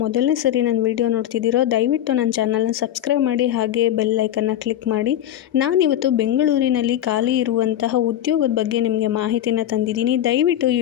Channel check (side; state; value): right; quieter; 11.6 dB